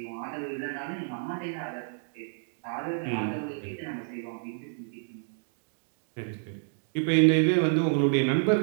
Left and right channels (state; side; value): silent; left; digital silence